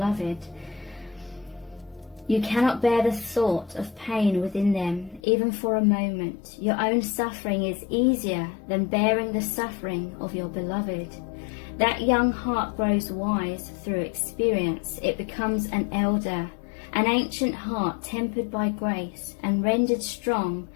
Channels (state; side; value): drops out; right; at 5.2 s